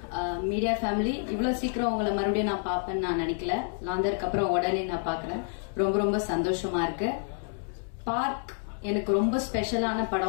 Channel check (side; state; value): right; silent; 59 dB below the other